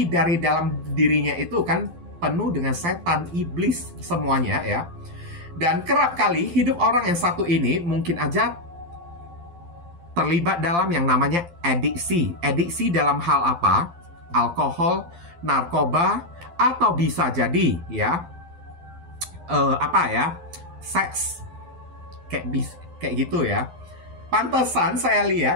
dari dalam dirinya itu kan penuh dengan setan, iblis semuanya ya. Dan kerap kali hidup orang yang satu ini mungkin aja terlibat dalam yang namanya adiksi. Adiksi dalam hal apa? Alkohol, narkoba, atau bisa jadi ya seks, kayak gitu ya. Pantesan saya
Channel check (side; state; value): left; late; 12 ms